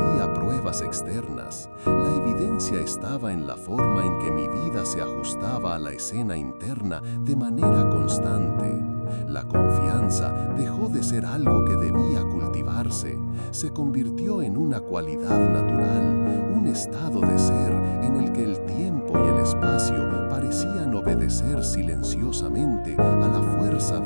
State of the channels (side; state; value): both; inverted; correlation -1.00